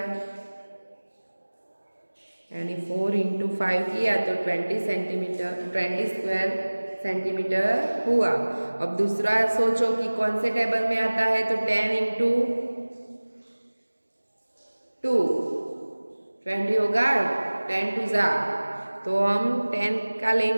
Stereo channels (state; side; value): inverted; both; correlation -1.00